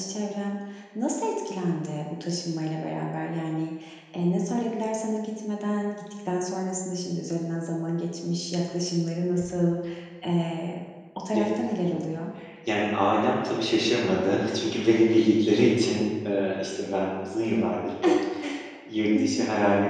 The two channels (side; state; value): both; identical; correlation 1.00